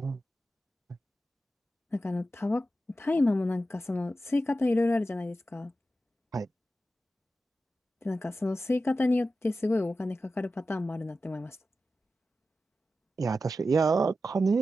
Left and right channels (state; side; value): normal; both; correlation 0.92